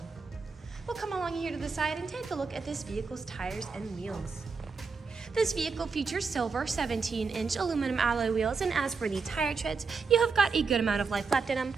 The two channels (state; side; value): quieter; left; 4.9 dB